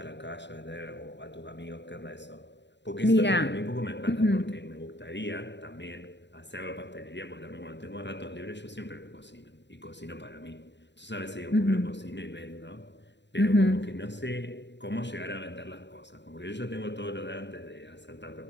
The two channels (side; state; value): right; late; 0.52 ms